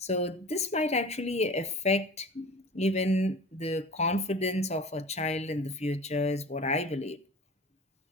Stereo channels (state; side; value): normal; both; correlation 0.38